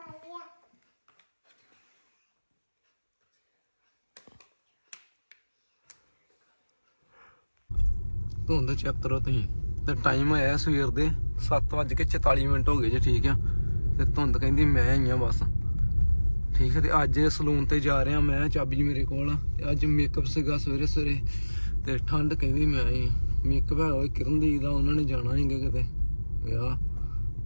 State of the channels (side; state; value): both; inverted; correlation -1.00